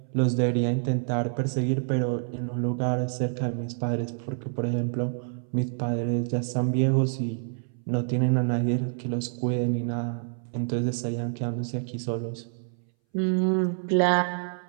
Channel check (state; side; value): silent; left; 60 dB below the other